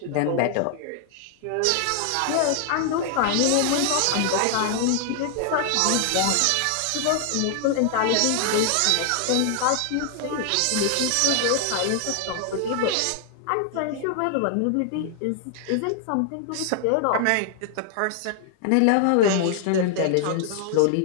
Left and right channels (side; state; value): both; different; correlation 0.00